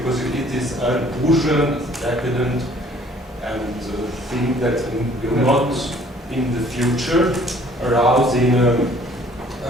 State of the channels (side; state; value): both; normal; correlation 0.56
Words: it is a bourgeois, decadent, and thing that will not in the future arouse in a